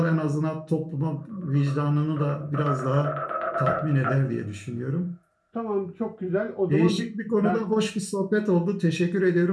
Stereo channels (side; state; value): both; identical; correlation 1.00